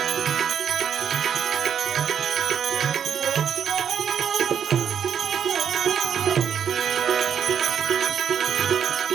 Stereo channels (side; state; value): left; quieter; 8.1 dB